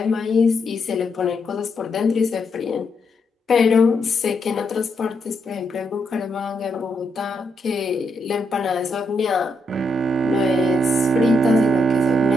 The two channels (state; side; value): normal; both; correlation 0.79